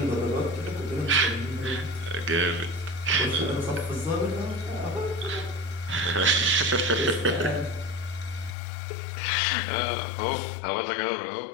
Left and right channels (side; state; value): right; drops out; at 8.6 s